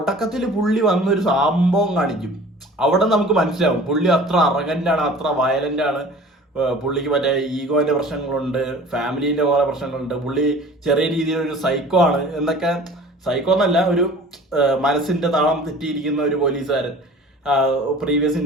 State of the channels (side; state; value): both; normal; correlation 0.45